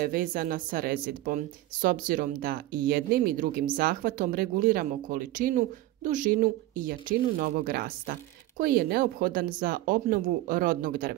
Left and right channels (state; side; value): quieter; left; 16.1 dB